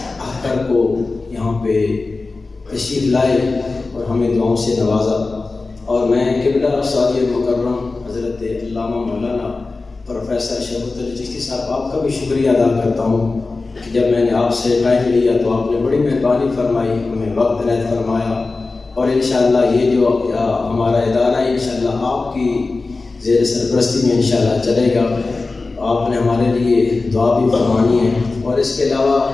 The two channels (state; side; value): quieter; right; 3.7 dB